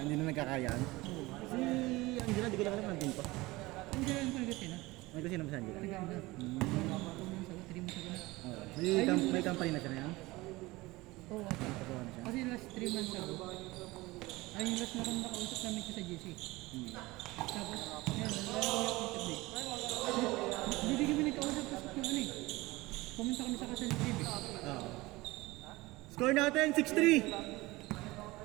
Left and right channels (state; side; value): quieter; left; 20.8 dB